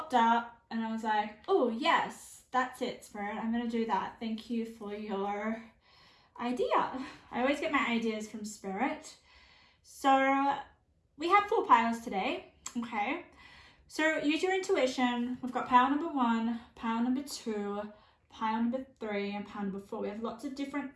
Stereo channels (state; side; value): identical; both; correlation 1.00